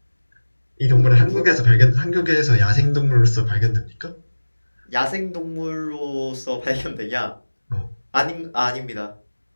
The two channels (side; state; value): both; inverted; correlation -1.00